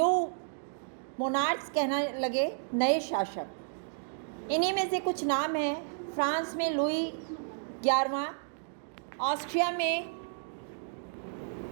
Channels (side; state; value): left; silent; digital silence